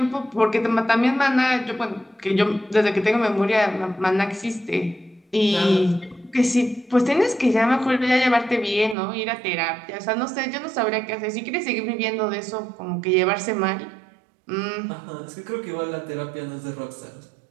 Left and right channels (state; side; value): drops out; left; at 9.0 s